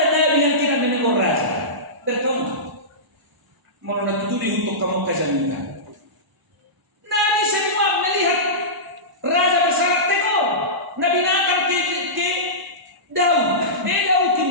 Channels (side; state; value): left; late; 1.0 ms